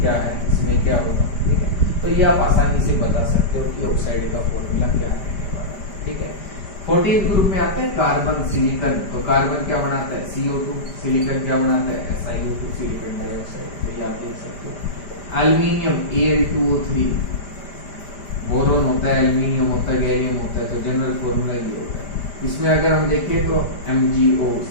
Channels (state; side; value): late; right; 5.0 ms